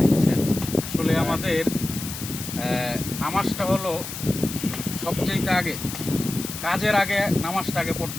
বুঝছেন? আসলে আমাদের নামাজটা হলো সবচেয়ে আগে, কাজের আগে নামাজটা আগে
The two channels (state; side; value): noise; left; hiss, 8 dB below the sound